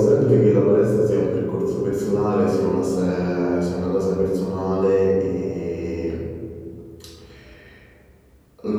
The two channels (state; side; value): identical; both; correlation 1.00